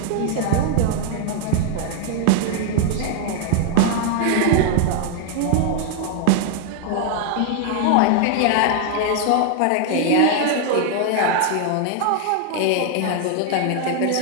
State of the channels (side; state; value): both; different; correlation 0.00